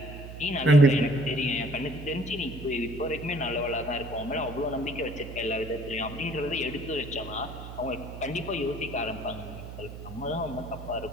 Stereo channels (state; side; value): noise; right; hum, 11 dB below the sound